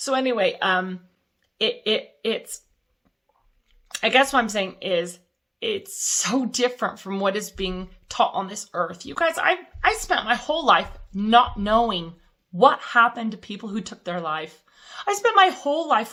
anyway, it's, I guess what I'm saying is it's so different from what is being taught on this earth. You guys, I spent my whole life not knowing what happened to people who took their life. I spent my whole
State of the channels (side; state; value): both; identical; correlation 1.00